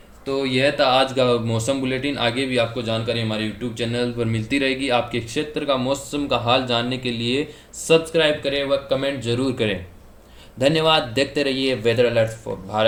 तो यह था आज का मौसम बुलेटिन। आगे भी आपको जानकारी हमारे यूट्यूब चैनल पर मिलती रहेगी। आपके क्षेत्र का मौसम का हाल जानने के लिए सब्सक्राइब करें व कमेंट जरूर करें। धन्यवाद। देखते रहिए weather alert for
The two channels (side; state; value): both; identical; correlation 1.00